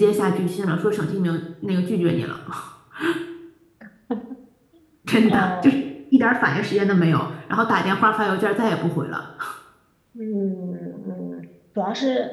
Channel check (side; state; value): both; identical; correlation 1.00